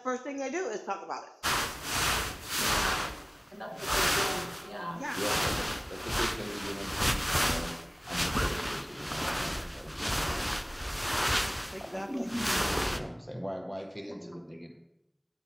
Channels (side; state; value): both; identical; correlation 1.00